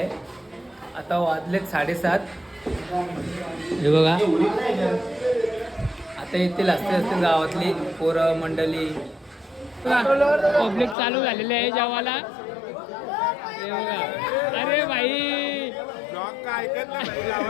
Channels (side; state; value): right; drops out; at 11.0 s